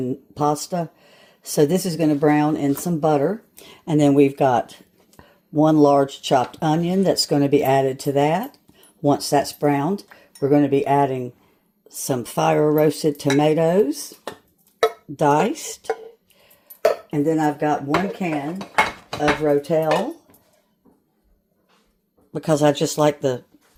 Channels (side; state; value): both; identical; correlation 1.00